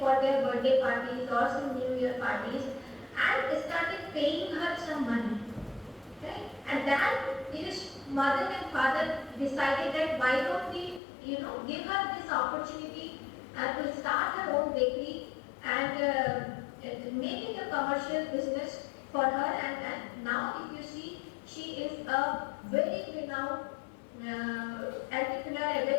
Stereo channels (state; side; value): drops out; right; at 11.0 s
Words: their birthday parties or some New Year parties, and started paying her some money. Right? And then his mother and father decided that why don't we, give her this opportunity to start her own bakery and make it a commercial business for her. And now, if you see, she is a very renowned entrepreneur, a